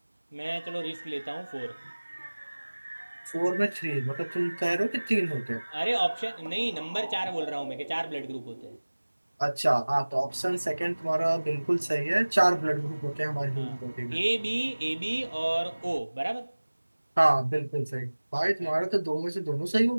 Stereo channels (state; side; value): inverted; both; correlation -1.00